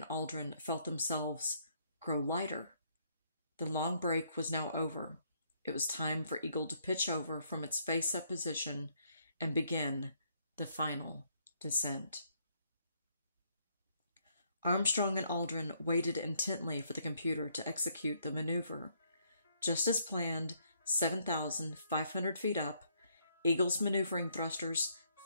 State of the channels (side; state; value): both; inverted; correlation -0.71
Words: Aldrin felt themselves grow lighter. The long break was now over. It was time for Eagle to pitch over from its face-up position and begin the final descent. Armstrong and Aldrin waited intently for the computer to execute the maneuver. Just as planned, 7,500 feet up, Eagle's maneuvering thrusters